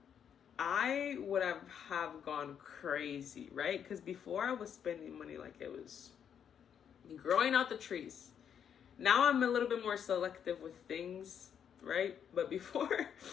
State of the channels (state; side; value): quieter; right; 8.3 dB